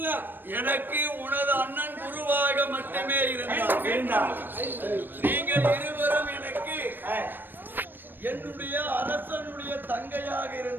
எனக்கு உனது அண்ணன் குருவாக மட்டுமே இருந்தார். நீங்கள் இருவரும் எனக்கு என்னுடைய அரசனுடைய தங்கையாக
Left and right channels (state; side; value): late; left; 0.094 ms